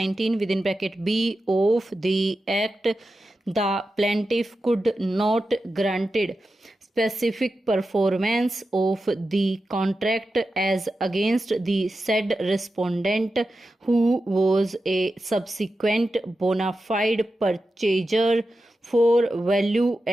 within bracket B of the Act, the plaintiff could not granted specific performance of the contract as against the said respondent, who was a subsequent bona fide purchaser for value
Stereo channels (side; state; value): both; normal; correlation 0.91